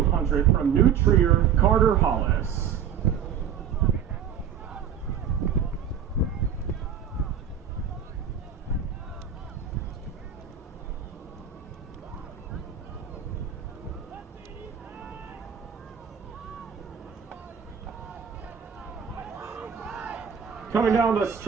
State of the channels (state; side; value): quieter; left; 8.1 dB